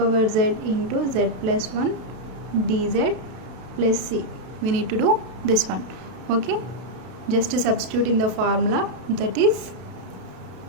z into z plus 1 dz plus c, we need to do this one. Okay, just to substitute in the formula, that is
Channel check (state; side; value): late; left; 32 ms